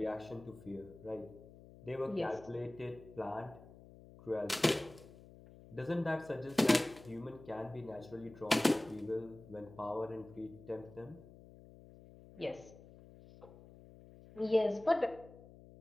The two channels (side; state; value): left; noise; hum, 19 dB below the sound